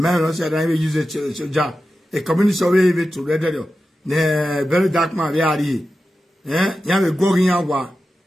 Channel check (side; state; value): both; normal; correlation 0.92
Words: also said I will use a job. A community survey to read ne very dark man we are here. Eh? You have a going out.